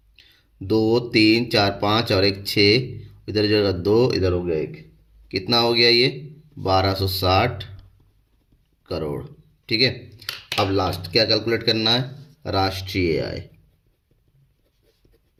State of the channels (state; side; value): identical; both; correlation 1.00